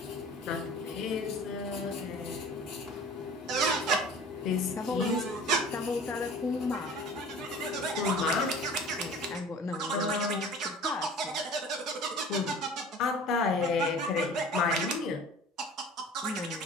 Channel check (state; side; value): normal; both; correlation 0.43